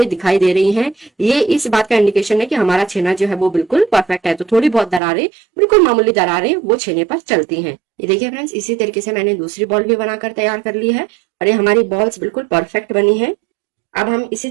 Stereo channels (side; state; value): left; drops out; at 5.0 s